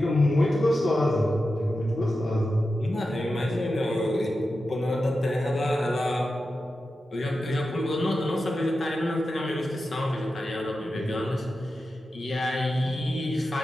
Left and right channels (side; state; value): both; normal; correlation 0.91